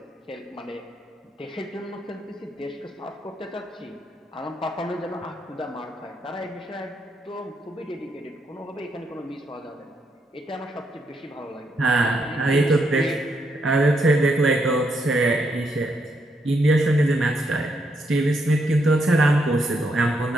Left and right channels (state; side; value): normal; both; correlation 0.78